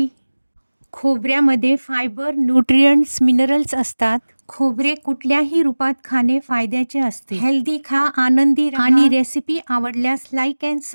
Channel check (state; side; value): inverted; both; correlation -1.00